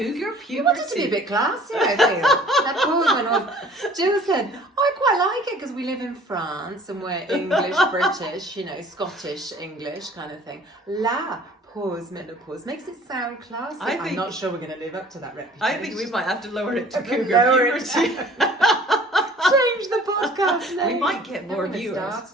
puberty. You wanted to be a bit classy, I feel. La Pause Menopause. Jill said, I quite like it because we live in France and we're English, British, Scottish English kind of thing. La Pause Menopause makes it sound classy. I'm not sure we're going to live up to that reputation. I think we might have to lower it to cougar puberty. Change the podcast name. We might get more viewers.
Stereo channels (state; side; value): normal; both; correlation 0.51